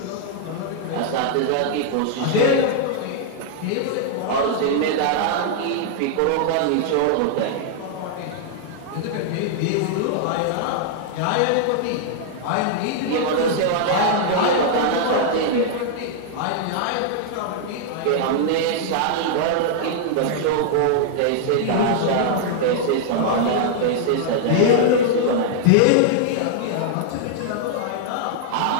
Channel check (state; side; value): different; both; correlation -0.01